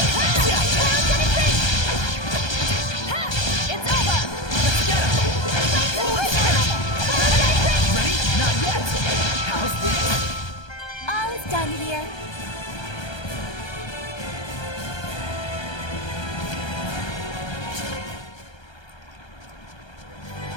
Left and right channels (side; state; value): right; late; 1.3 ms